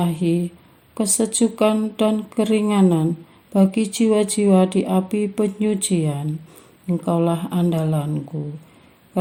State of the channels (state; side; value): identical; both; correlation 1.00